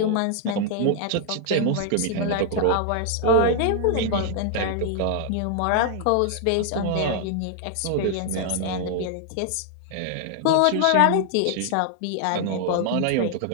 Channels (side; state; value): both; different; correlation 0.00